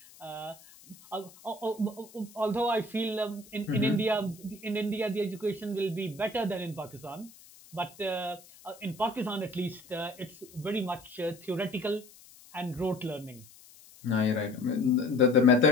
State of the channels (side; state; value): left; noise; hiss, 22 dB below the sound